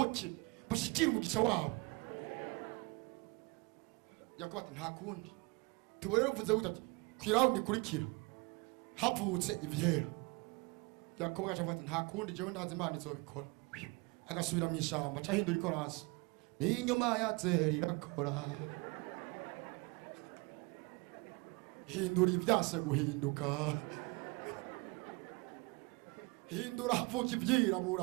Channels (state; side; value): quieter; left; 27.6 dB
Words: bashikira umugisha wabo. Yakobo ati nta kundi tubonera uvuze gute ati kwiraundi kurikira havutse ivyera. Yakobo gacha ati nta kundi jewe ndazi Imana izobikora. Agasubira mu ishamba cahindura ikorasi ni inyuma ya zeri rakora hindura ivyase guhinduka hindura havuka